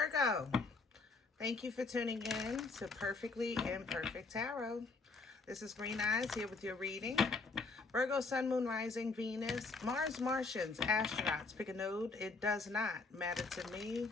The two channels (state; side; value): quieter; right; 4.0 dB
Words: thank you for tuning in to Perfectly Imperfect Tarot. This is Green Eyes here with your reading. Virgo, Sun, Moon, Rising, Venus, Mars, Martians, astronauts. Pick a node. It does not matter to me.